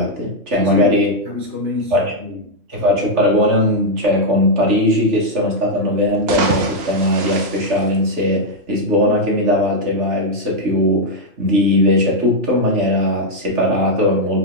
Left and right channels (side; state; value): left; late; 3.4 ms